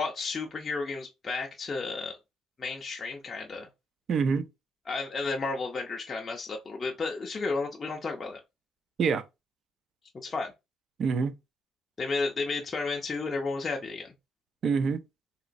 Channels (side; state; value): both; normal; correlation 0.79